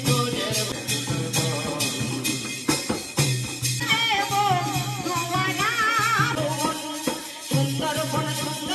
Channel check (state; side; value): identical; both; correlation 1.00